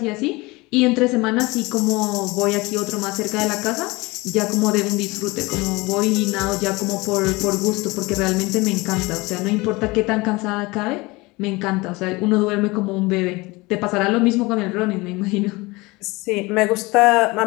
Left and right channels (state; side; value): quieter; right; 23.1 dB